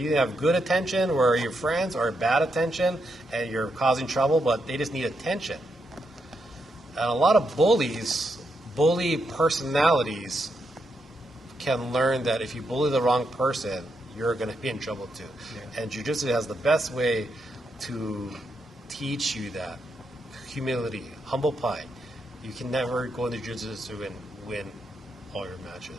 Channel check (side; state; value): both; normal; correlation 0.82